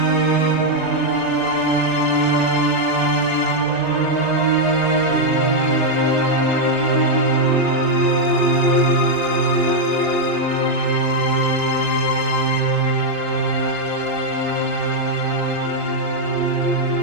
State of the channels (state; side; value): normal; both; correlation -0.01